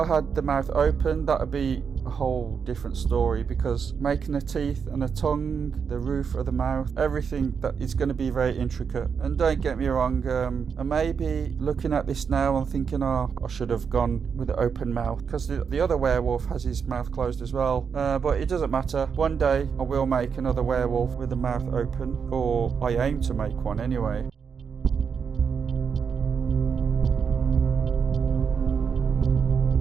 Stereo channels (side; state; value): left; quieter; 6.4 dB